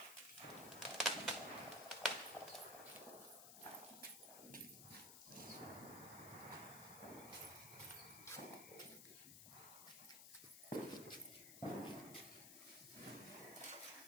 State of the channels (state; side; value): noise; left; hiss, 9 dB below the sound